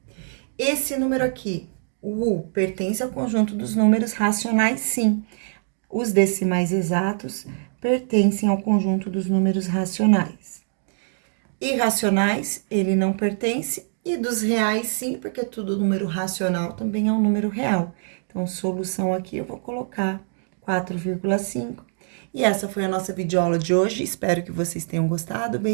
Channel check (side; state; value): left; silent; digital silence